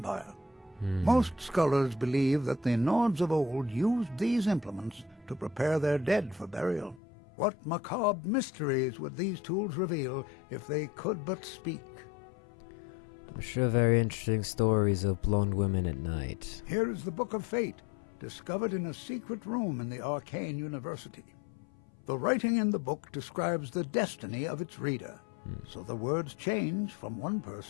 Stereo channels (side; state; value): right; drops out; at 7.0 s